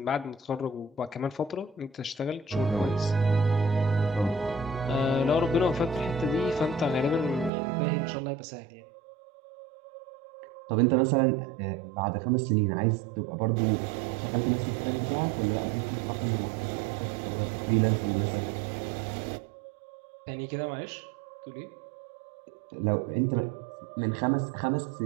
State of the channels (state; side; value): drops out; left; at 7.5 s